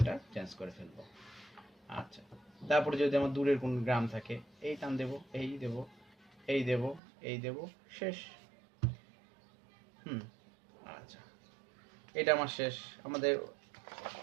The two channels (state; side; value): drops out; left; at 7.0 s